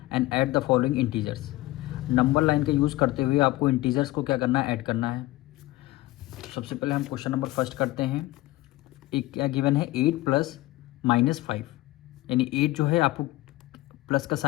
and add the following integers. Number line का यूज़ करते हुए आपको इंटीजर्स को क्या करना है, ऐड करना है। सबसे पहले हम क्वेश्चन नंबर फर्स्ट करते हैं। एक क्या गिवन है, 8 प्लस -5, यानी 8 जो है आपको प्लस का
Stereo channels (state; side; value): quieter; right; 18.1 dB